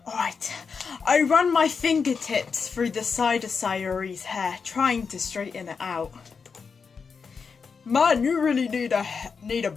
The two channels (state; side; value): quieter; right; 5.5 dB